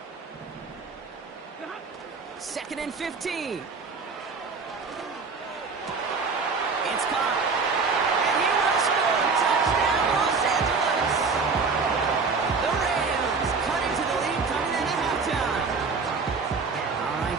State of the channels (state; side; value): quieter; left; 4.7 dB